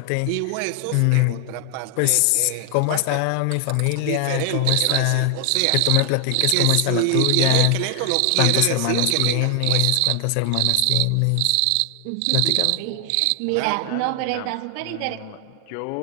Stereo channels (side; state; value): both; different; correlation 0.00